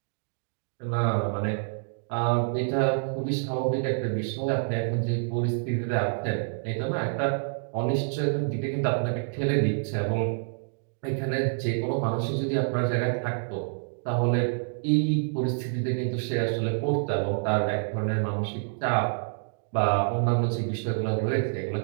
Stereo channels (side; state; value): left; silent; digital silence